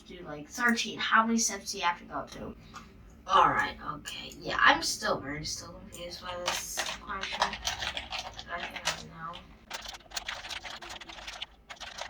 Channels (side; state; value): both; identical; correlation 1.00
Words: do like 13. How many steps do you have to go to? Alright, okay. Yeah, I'm still confused by this question. I think I know.